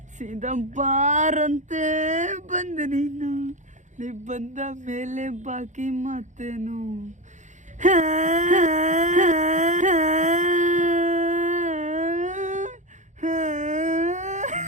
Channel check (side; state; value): left; late; 0.35 ms